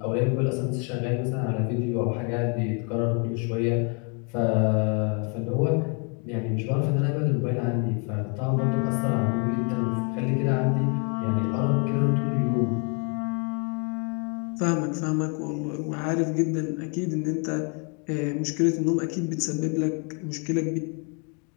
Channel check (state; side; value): quieter; right; 37.3 dB